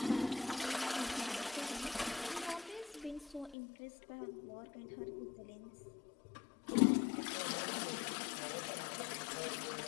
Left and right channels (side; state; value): right; drops out; at 3.6 s